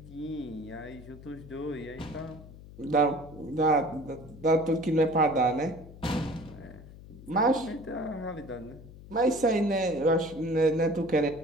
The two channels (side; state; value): left; noise; hum, 17 dB below the sound